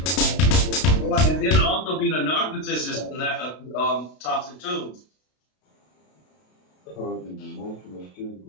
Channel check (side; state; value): right; late; 32 ms